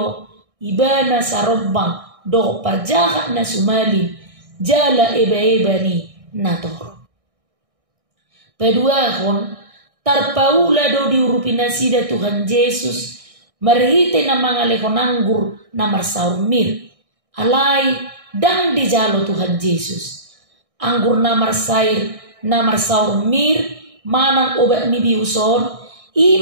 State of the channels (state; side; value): late; left; 1.6 ms